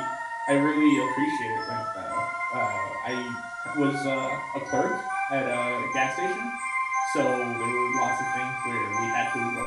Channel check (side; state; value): both; identical; correlation 1.00